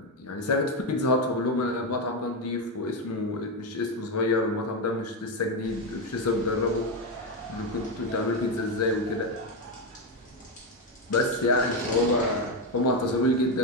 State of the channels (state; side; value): normal; both; correlation 0.09